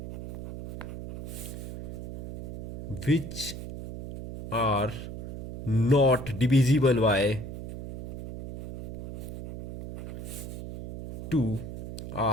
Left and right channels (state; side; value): noise; right; hum, 8 dB below the sound